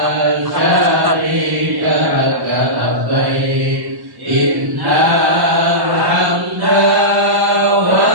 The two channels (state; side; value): late; left; 1.0 ms